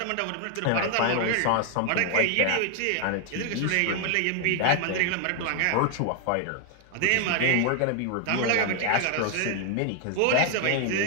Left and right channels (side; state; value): both; different; correlation 0.00